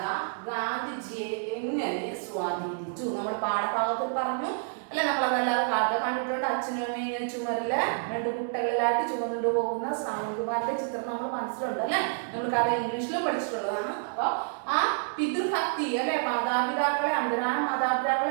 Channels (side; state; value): left; silent; digital silence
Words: ഗാന്ധിജിയെ എങ്ങനെ സ്വാധീനിച്ചു? നമ്മൾ പാഠഭാഗത്തിൽ പറഞ്ഞു അല്ലെ. നമ്മളതല്ലാതെ കഥ കണ്ടിട്ടുണ്ട്. അച്ഛനും അമ്മയും ഇങ്ങനെ ചുമരില് 2 കുട്ടകളിലായിട്ട് ചുമന്നുകൊണ്ട് പോകുന്ന ശ്രാവൺകുമാറിന്റെ ചിത്രം നമ്മൾ മനസ്സിലുണ്ട് അല്ലെ. നമ്മൾ കഥ ഇംഗ്ലീഷിലും പഠിച്ചിട്ടുള്ളതാണ്. അപ്പൊ ആ പിതൃഭക്തി അല്ലെ, മാതാപിതാക്കളെ, അന്തരാന